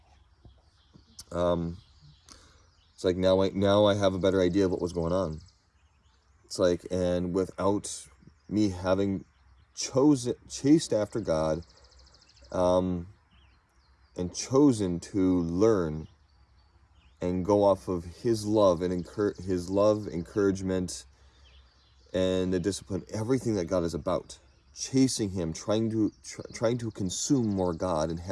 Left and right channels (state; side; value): identical; both; correlation 1.00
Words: It's like now I have a better idea of what was going on. It's like, and without me having chased after God, and chosen to learn and go off of His love and His love, encouragement, and the discipline, everything that God is about, chasing Him, trying to consume more God and